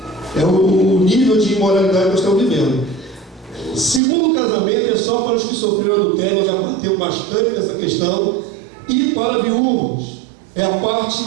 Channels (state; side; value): drops out; left; at 4.0 s